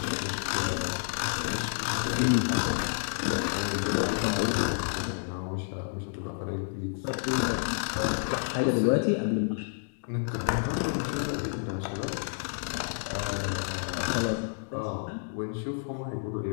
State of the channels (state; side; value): silent; right; digital silence